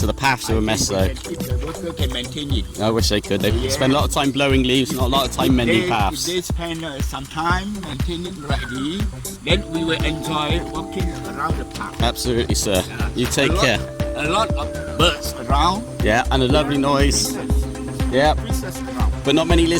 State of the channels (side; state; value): both; identical; correlation 1.00